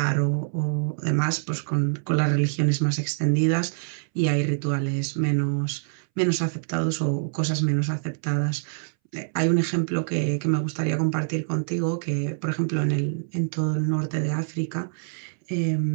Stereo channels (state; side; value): silent; left; 61 dB below the other